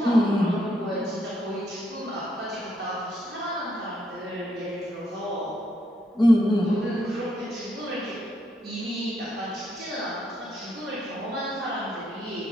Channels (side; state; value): both; normal; correlation 0.75